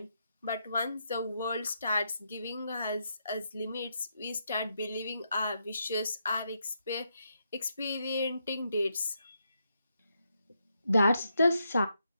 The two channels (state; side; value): inverted; both; correlation -0.81